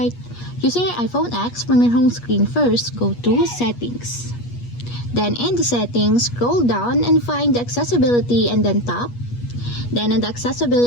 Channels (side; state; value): right; late; 8.4 ms